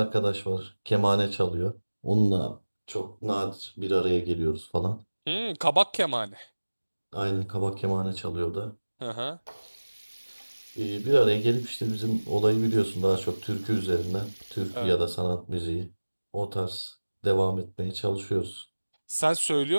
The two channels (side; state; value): both; inverted; correlation -1.00